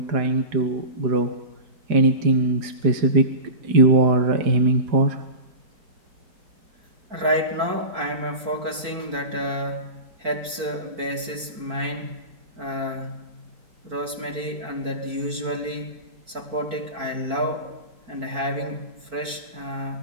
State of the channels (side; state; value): left; late; 4.4 ms